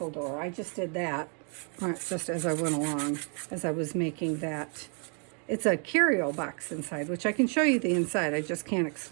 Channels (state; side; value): quieter; left; 39.8 dB